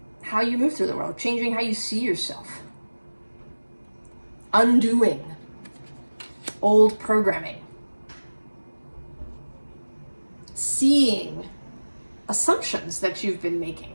how you move through the world, changing how you see yourself, undoing old programming, seeing assumptions that you've been making,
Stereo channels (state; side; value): inverted; both; correlation -1.00